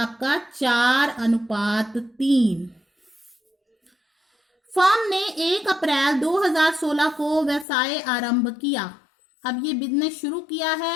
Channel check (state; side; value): drops out; right; at 7.7 s